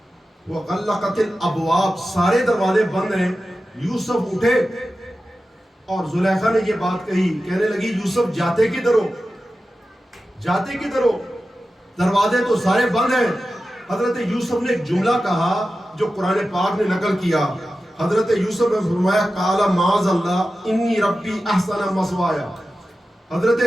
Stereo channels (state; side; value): normal; both; correlation 0.93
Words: وَغَلَّقَتِ الْأَبْوَابَ، سارے دروازے بند ہیں۔ یوسف اٹھے اور زلیخا نے یہ بات کہی، کہنے لگی یوسف جاتے کدھر ہو، جاتے کدھر ہو، دروازے تو سارے بند ہیں۔ حضرت یوسف نے ایک جملہ کہا جو قرآن پاک نے نقل کیا۔ حضرت یوسف نے فرمایا قال معاذ اللہ انی ربی احسن مثوایا، حضرت